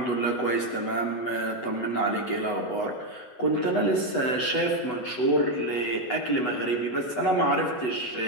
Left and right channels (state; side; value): late; right; 8.1 ms